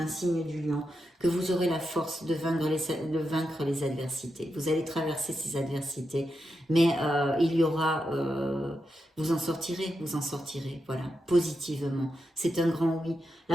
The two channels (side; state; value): both; normal; correlation 0.86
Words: signe du lion, que vous aurez la force de vaincre les adversités. Vous allez traverser ces adversités, mais il y aura, vous en sortirez, voilà, positivement. C'est un grand oui.